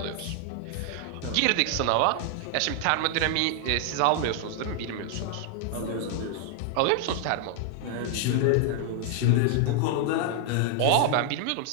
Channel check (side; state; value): both; different; correlation 0.00